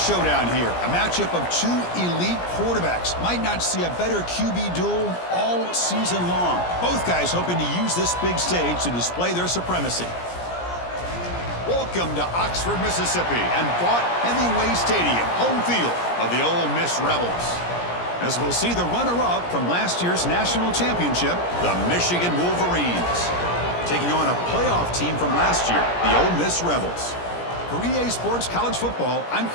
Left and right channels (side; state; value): right; late; 17 ms